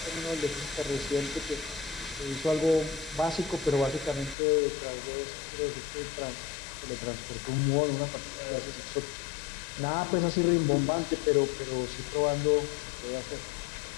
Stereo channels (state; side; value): drops out; right; at 4.4 s